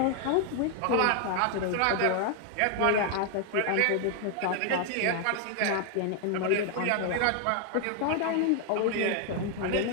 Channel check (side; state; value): both; different; correlation 0.00